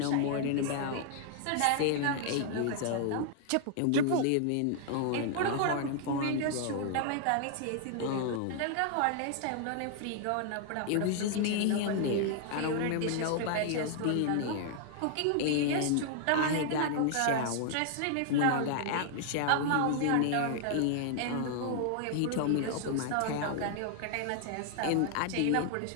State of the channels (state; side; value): different; both; correlation 0.00